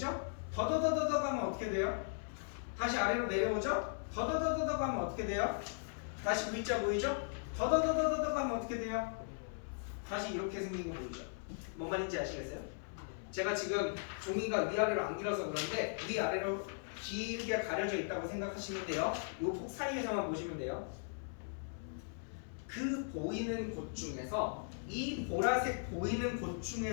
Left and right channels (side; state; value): right; silent; 52 dB below the other